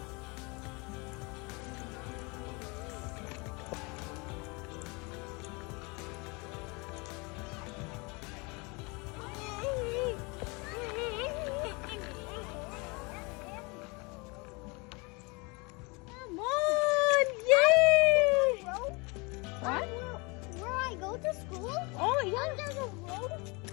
Come on, yay! What? Where I go to school? Oh, yeah. There's a road.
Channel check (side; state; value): right; quieter; 28.5 dB